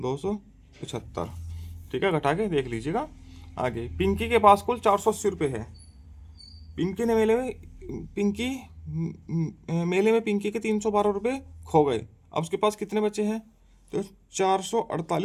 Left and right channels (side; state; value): both; identical; correlation 1.00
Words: ठीक है, घटा के देख लीजिएगा। आगे पिंकी के पास कुल 480 रुपये है। पिंकी ने मेले में पिंकी के 312 रुपये खो गए। अब उसके पास कितने बचे हैं? तो